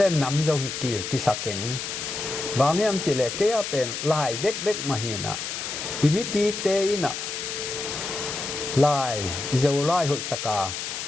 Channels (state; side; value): noise; left; hiss, 5 dB below the sound